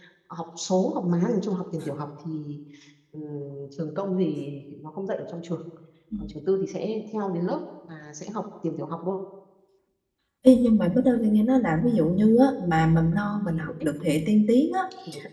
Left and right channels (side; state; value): both; identical; correlation 1.00